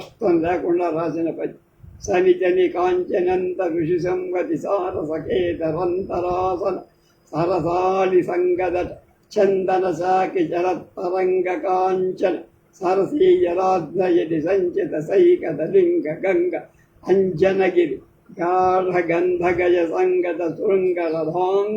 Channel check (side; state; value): both; identical; correlation 1.00